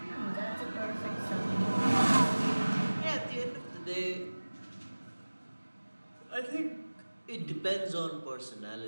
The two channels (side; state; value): both; inverted; correlation -1.00